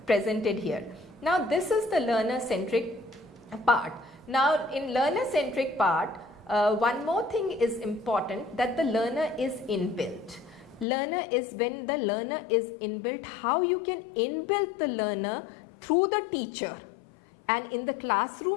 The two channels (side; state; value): right; drops out; at 10.9 s